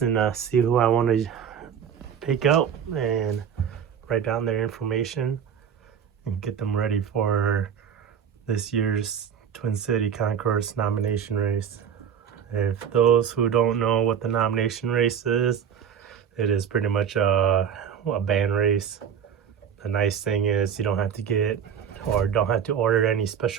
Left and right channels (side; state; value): left; quieter; 8.0 dB